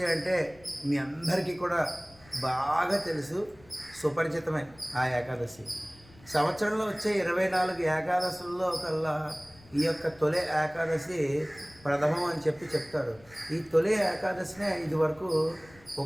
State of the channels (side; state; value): left; noise; rumble, 25 dB below the sound